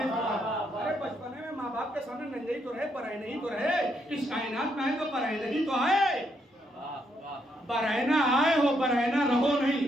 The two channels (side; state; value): both; normal; correlation 0.76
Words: अरे बचपन में माँ बाप के सामने नंगे ही तो रहे, पराए नहीं तो रहे, इस कायनात में है तो पराए नहीं तो है। बरहना आए हो बरहना रहो नहीं।